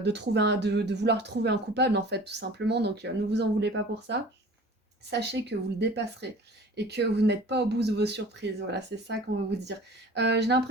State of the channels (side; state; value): both; normal; correlation 0.43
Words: vouloir trouver un coupable en fait tout simplement. Donc ne vous en voulez pas pour ça. Sachez que vous le dépasserez et que vous n'êtes pas au bout de vos surprises. Voilà, c'est ça qu'on veut vous dire. J'ai